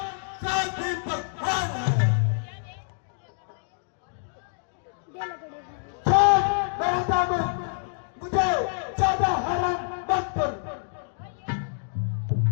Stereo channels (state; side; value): silent; right; digital silence